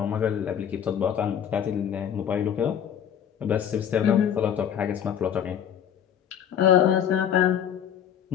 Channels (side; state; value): right; quieter; 8.9 dB